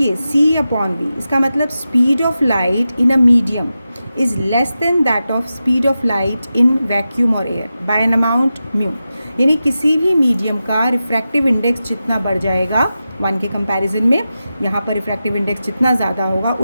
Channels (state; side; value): inverted; both; correlation -0.92